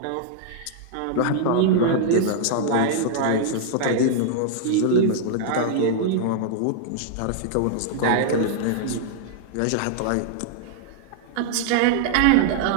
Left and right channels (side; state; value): both; different; correlation 0.00